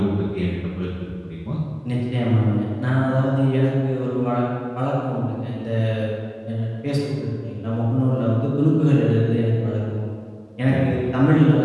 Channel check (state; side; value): identical; both; correlation 1.00